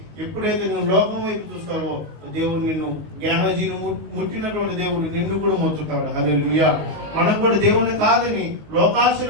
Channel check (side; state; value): left; late; 19 ms